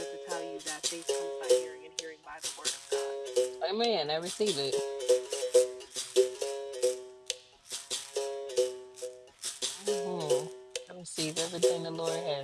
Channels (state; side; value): identical; both; correlation 1.00